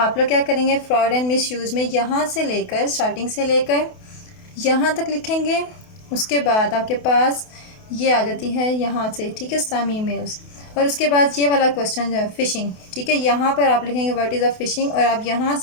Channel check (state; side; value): late; right; 28 ms